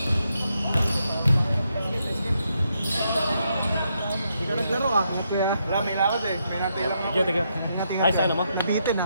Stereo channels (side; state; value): both; inverted; correlation -0.80